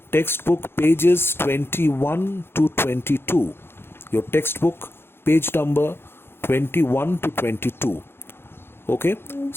pages 21 to 22. Your textbook page number 21 to 22. Okay,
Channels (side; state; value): right; late; 0.11 ms